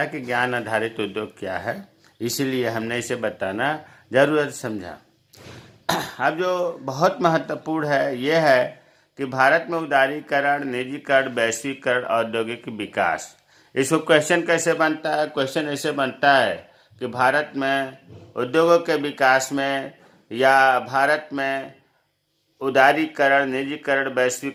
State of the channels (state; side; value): identical; both; correlation 1.00